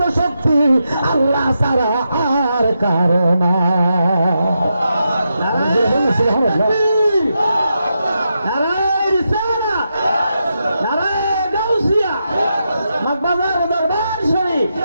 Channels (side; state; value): both; inverted; correlation -0.85